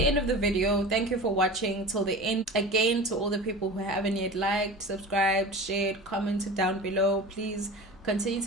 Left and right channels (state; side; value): normal; both; correlation 0.34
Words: of the video. Thank you for watching till the end. Again, to all the people who haven't yet liked, subscribed, shared, commented down below, please continue